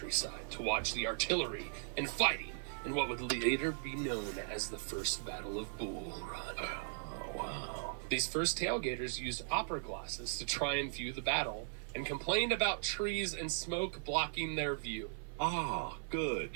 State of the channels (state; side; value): silent; left; 52 dB below the other